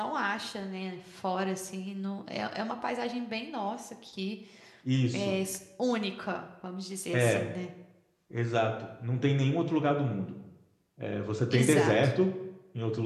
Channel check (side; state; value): both; identical; correlation 1.00